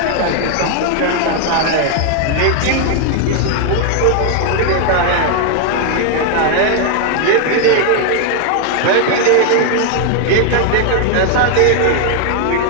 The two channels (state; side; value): different; both; correlation 0.00